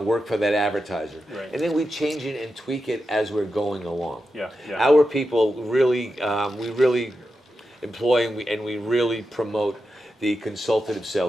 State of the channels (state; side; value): normal; both; correlation 0.89